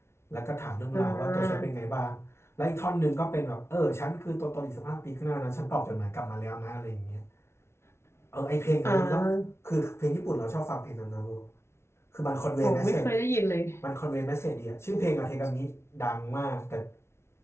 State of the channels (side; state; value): right; late; 0.13 ms